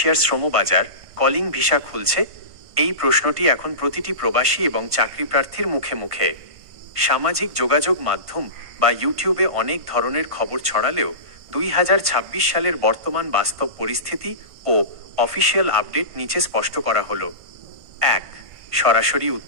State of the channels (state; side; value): late; left; 1.5 ms